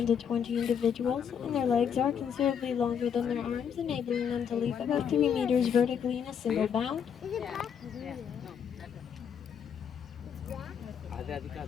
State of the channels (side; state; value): right; quieter; 7.7 dB